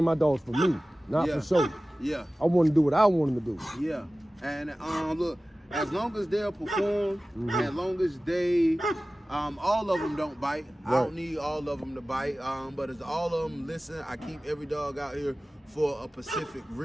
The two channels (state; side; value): normal; both; correlation 0.97